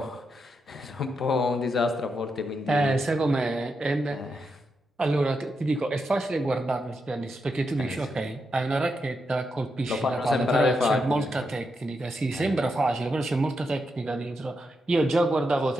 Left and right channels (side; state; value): both; normal; correlation 0.84